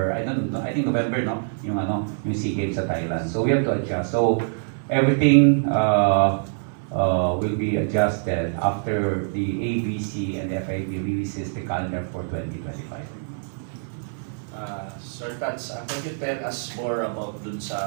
I don't know, I think November, no? Yung SEA Games sa Thailand. So we have to adjust. So everything will be adjusted after the ABC and the FIB releases the calendar for 2025. Sir Tats, can you tell us more about dun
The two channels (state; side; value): silent; left; digital silence